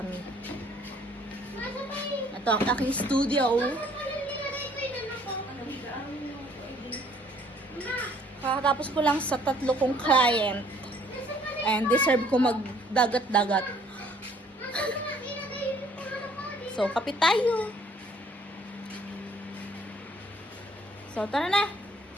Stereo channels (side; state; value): both; normal; correlation 0.60